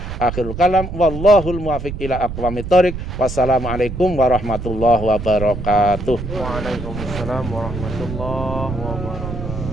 Akhirul kalam wallahul muwaffiq ila aqwamit thoriq. Wassalamualaikum warahmatullahi wabarakatuh. Waalaikumsalam warahmatullahi wabarakatuh.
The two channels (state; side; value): noise; right; rumble, 7 dB below the sound